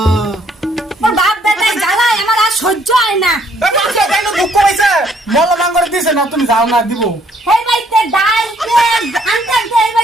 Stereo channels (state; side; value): normal; both; correlation 0.66